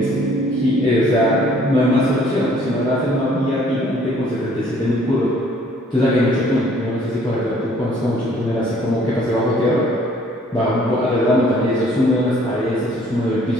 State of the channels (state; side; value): normal; both; correlation 0.59